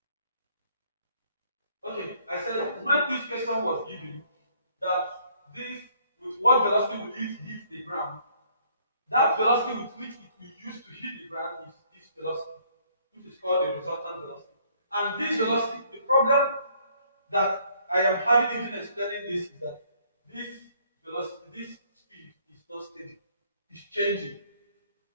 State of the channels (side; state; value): both; inverted; correlation -0.63